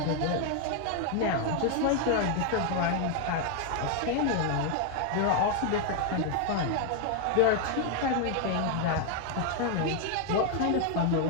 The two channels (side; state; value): both; different; correlation 0.00